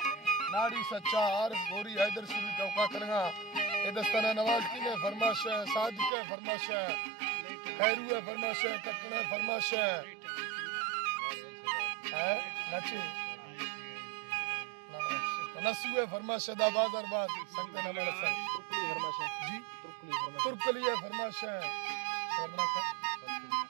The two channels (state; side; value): drops out; left; at 6.1 s